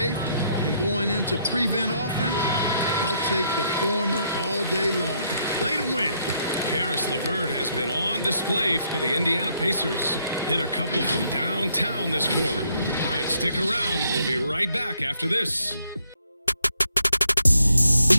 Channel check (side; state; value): both; inverted; correlation -0.72